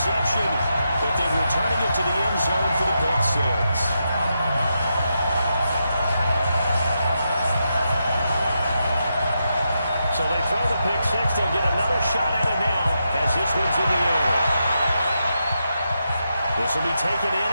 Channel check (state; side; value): inverted; both; correlation -0.85